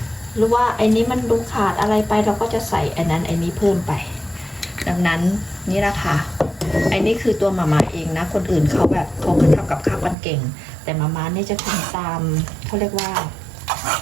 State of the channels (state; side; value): drops out; left; at 10.2 s